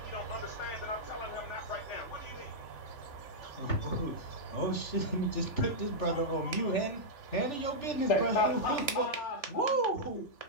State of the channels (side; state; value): right; late; 3.4 ms